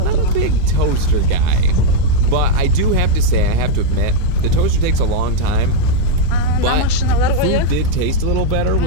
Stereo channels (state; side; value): different; both; correlation -0.01